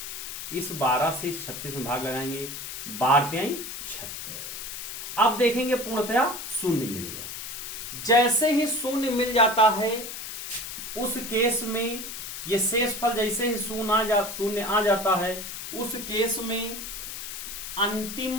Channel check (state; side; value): noise; left; hiss, 8 dB below the sound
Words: इस 12 से इस 36 में भाग लगाएंगे, 12×36। अब देखेंगे पूर्णतया शून्य मिल गया। जैसे ही शून्य मिल जाता है उस केस में ये शेषफल, जैसे ही शून्य आ जाता है उस केस में